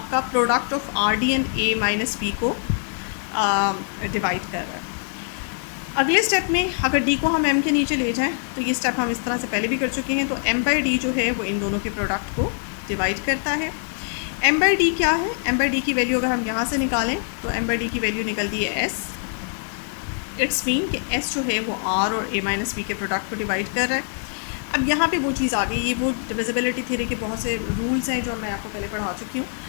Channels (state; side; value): silent; right; 63 dB below the other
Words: product of R D and A minus B को डिवाइड कर रहा है। अगले स्टेप में अगर डी को हम एम के नीचे ले जाएं तो ये स्टेप हम इस तरह से पहले भी कर चुके हैं, तो एम बाई डी जो है वो इन दोनों के प्रोडक्ट को डिवाइड करता है। एम बाई डी क्या है, एम बाई डी की वैल्यू अगर हम यहाँ से निकालें तो एम बाई डी की वैल्यू निकलती है एस। इट्स मीन कि एस जो है वो आर और ए माइनस बी के प्रोडक्ट को डिवाइड कर रहा है। अब यहाँ पे वो चीज़ आ गई, ये वो डिविजिबिलिटी थ्योरी के बहुत से रूल्स हैं जो मैं आपको पहले पढ़ा चुकी हूँ,